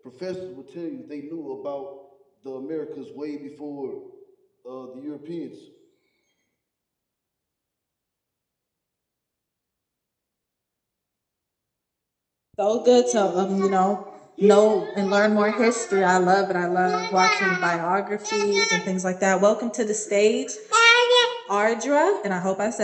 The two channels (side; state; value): both; identical; correlation 1.00